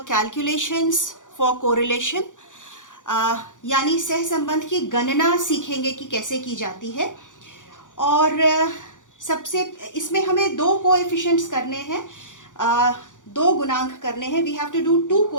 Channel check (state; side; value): late; right; 0.87 ms